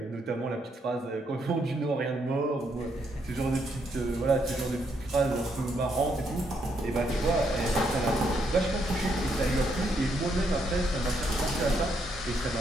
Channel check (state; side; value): normal; both; correlation 0.75